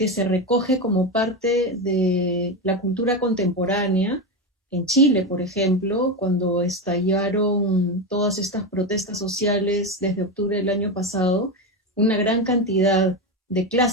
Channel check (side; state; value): both; normal; correlation 0.15